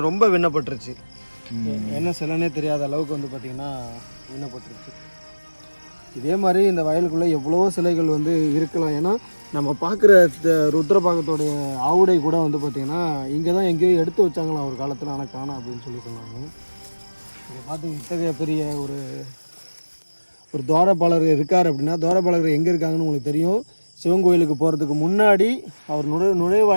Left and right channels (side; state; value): both; inverted; correlation -1.00